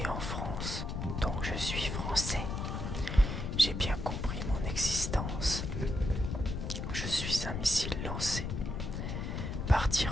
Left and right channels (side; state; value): left; noise; rumble, 3 dB below the sound